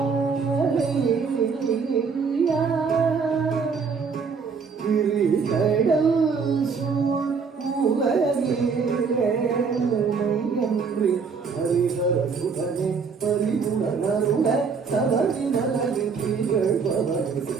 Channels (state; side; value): quieter; left; 5.4 dB